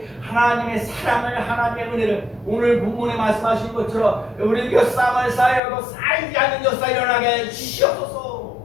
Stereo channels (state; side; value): drops out; right; at 5.6 s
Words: 하나님의 사랑을 하나님의 은혜를 오늘 본문에 말씀하신 것처럼 우리 곁쌈을 쌓여도 쌓이지 않는 역사 일어나게 주시옵소서.